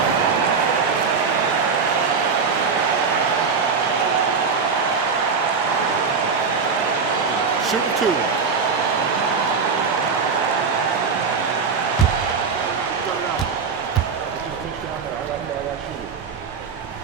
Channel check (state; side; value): quieter; left; 5.3 dB